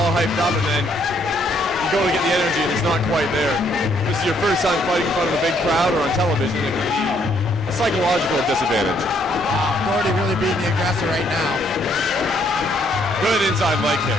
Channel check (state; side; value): normal; both; correlation 0.69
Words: hyped up, and then you go to get the energy, and it's not quite there. This is your first time fighting in front of a big crowd or on television. A psychological disadvantage. Doherty really being the aggressor right now. Good inside leg